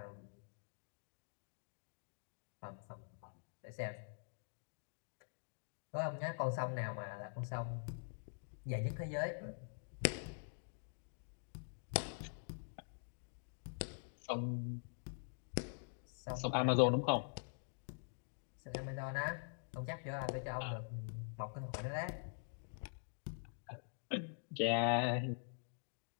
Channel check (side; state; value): right; silent; digital silence